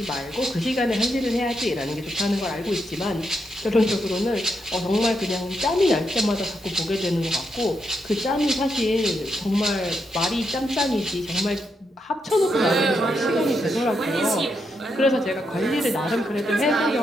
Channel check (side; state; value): both; normal; correlation 0.82